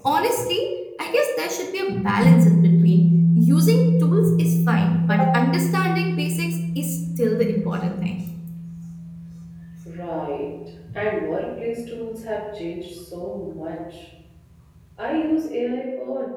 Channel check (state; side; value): identical; both; correlation 1.00